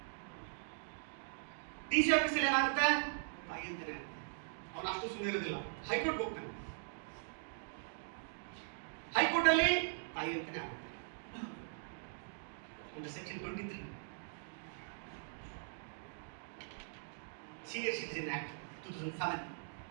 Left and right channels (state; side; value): silent; left; digital silence